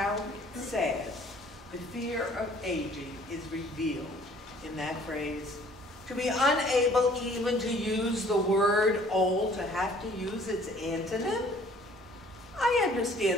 sad the fear of aging is revealed in that phrase. To be unable even to use the word old, to have to use its antonym? I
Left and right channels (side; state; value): both; normal; correlation 0.55